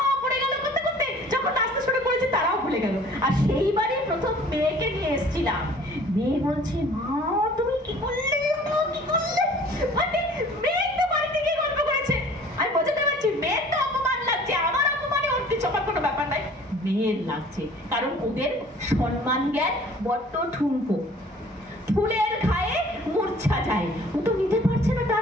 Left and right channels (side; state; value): both; normal; correlation 0.50